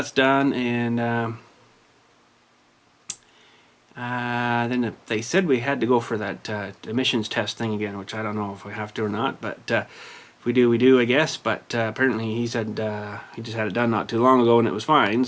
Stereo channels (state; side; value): identical; both; correlation 1.00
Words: done, and then they said we had to go for that emissions test thing again, which I don't know if we have to or not, but if we do, we do, I guess. But apparently he said he just had it done not too long ago and it was fine,